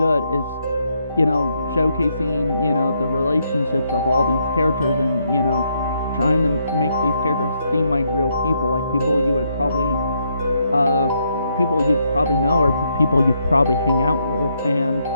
is, you know, showcasing, you know, the relationships of all these characters, and, you know, trying to make these characters seem like real people, like people you would probably know, or people you'd probably hang out with. And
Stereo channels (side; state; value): both; inverted; correlation -0.76